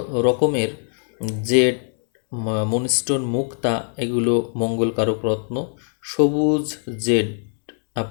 রকমের জেড, মুনস্টোন, মুক্তা, এগুলো মঙ্গলকারক রত্ন। সবুজ জেড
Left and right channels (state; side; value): silent; right; 65 dB below the other